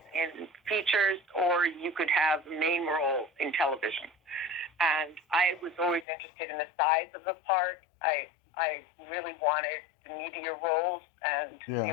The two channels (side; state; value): right; drops out; at 6.1 s